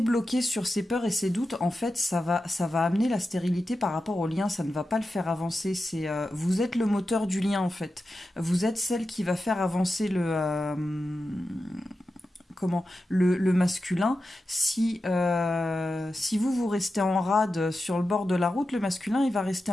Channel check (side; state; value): both; normal; correlation 0.91